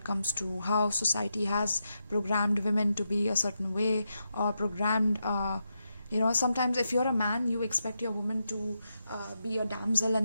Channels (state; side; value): inverted; both; correlation -0.85